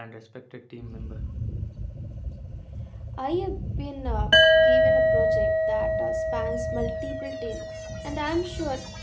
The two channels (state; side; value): identical; both; correlation 1.00